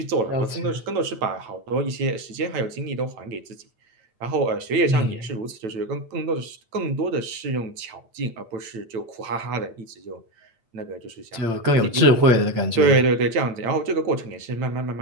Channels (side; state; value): left; late; 9.0 ms